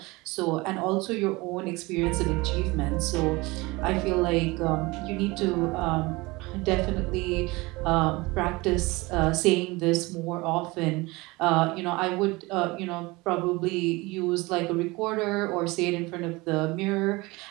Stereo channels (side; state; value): left; quieter; 23.0 dB